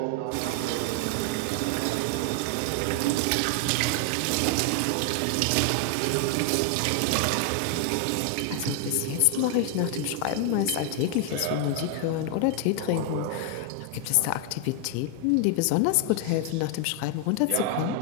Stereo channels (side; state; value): both; different; correlation 0.00